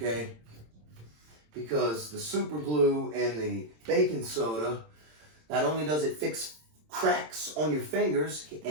Because the super glue and the baking soda, not only does it fix cracks on your fingers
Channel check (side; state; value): left; late; 27 ms